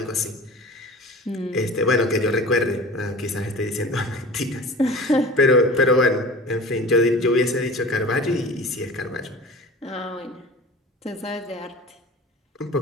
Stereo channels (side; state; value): both; normal; correlation 0.38